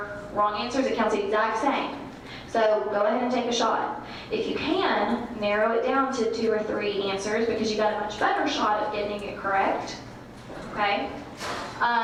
wrong answers. It counts the exact same. So go ahead and take a shot. If you can, narrow it down to 2 or 3 answers because you got a much better shot of getting it correct, okay?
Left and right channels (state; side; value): identical; both; correlation 1.00